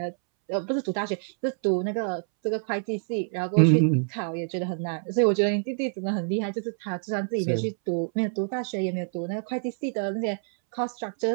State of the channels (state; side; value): silent; left; 60 dB below the other